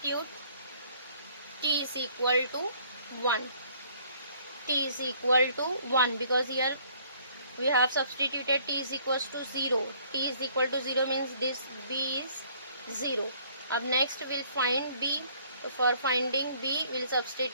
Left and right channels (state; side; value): inverted; both; correlation -0.60